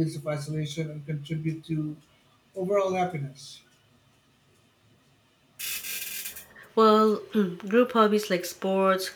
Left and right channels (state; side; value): identical; both; correlation 1.00